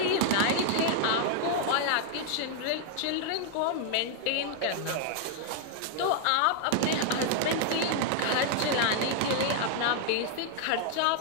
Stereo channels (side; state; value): both; different; correlation 0.00